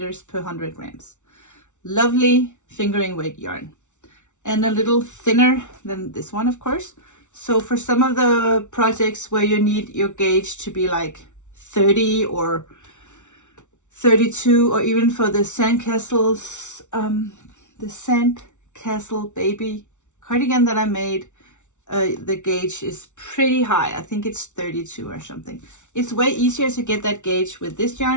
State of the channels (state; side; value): late; right; 0.84 ms